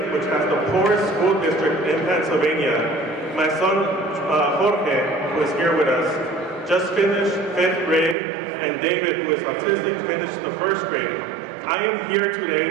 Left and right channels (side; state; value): left; drops out; at 8.2 s